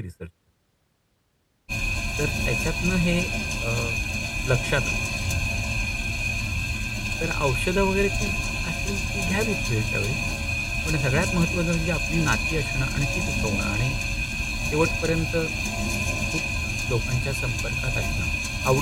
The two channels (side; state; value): both; identical; correlation 1.00